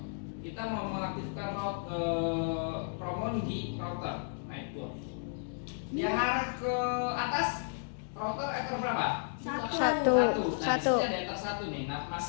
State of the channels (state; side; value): silent; right; digital silence